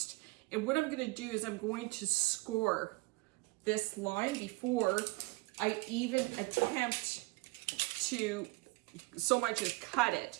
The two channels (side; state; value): left; quieter; 24.0 dB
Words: And what I'm going to do is I'm going to score this line before I even attempt to so much as cut